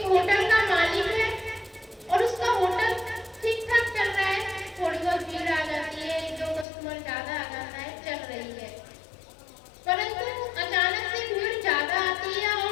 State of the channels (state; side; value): drops out; right; at 6.7 s